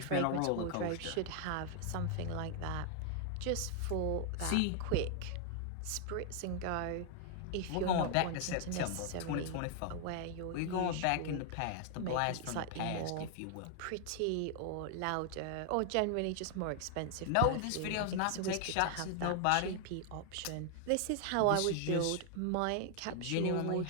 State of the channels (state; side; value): different; both; correlation 0.00